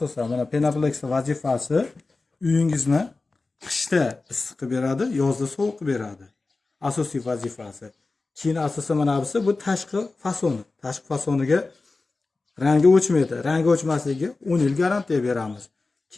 mana Penaplex vazifasi uyingizni qishda issiq qilib beradi, yozda sovuq qilib beradi. Asosiy vazifasi. Keyin asosan mana bu tashqi fasoni. Tashqi fasoniga rangi o'chmaydi. Rangi o'chmasligiga 10 yil garantiya beramiz.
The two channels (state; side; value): quieter; right; 3.6 dB